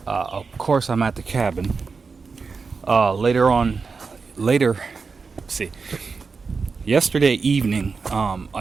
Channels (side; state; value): left; quieter; 4.8 dB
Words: Of course, I'm at the cabin. Yesterday evening,